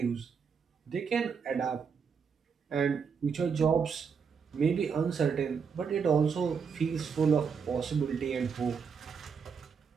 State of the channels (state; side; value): quieter; left; 6.1 dB